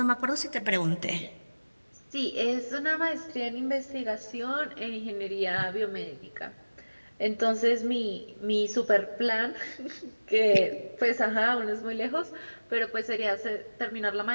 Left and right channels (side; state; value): both; inverted; correlation -1.00